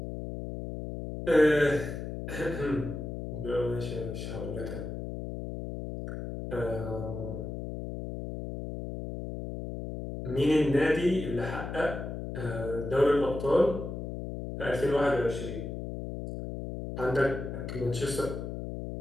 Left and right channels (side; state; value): left; noise; hum, 6 dB below the sound